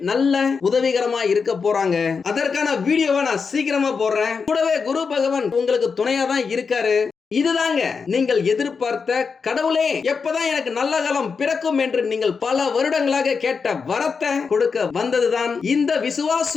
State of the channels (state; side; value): quieter; right; 5.4 dB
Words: நல்ல உதவிகரமா இருக்க போறாங்க. அதற்கான வீடியோவை நான் சீக்கிரமா போடுறேன். கூடவே குரு பகவான் உங்களுக்கு துணையா தான் இருக்காரு. இதுதாங்க நீங்கள் எதிர்பார்த்த கடவுளே எப்பதான் எனக்கு நல்ல காலம் பிறக்கும் என்று நீங்கள் பல வருடங்களாக கேட்ட வரத்தை கொடுக்க வந்ததுதான் இந்த